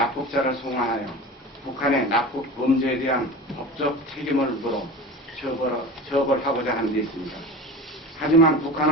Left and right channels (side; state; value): both; normal; correlation 0.32